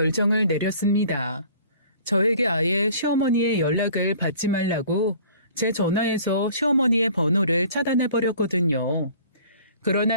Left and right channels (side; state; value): both; inverted; correlation -0.50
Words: 내렸습니다. 저에게 아예 시어머니의 연락을 받지 말라고 제 전화에서 시어머니의 번호를 차단해버렸거든요.